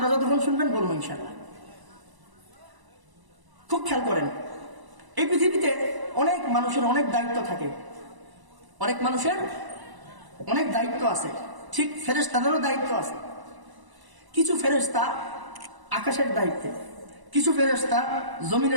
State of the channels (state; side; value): late; left; 1.0 ms